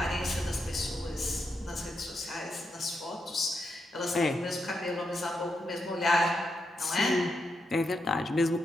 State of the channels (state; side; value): normal; both; correlation 0.83